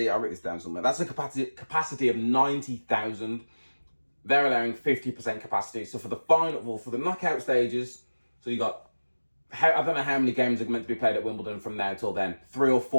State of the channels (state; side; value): inverted; both; correlation -1.00